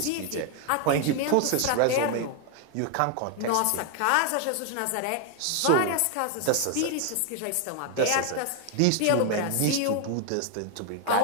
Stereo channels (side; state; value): both; different; correlation 0.01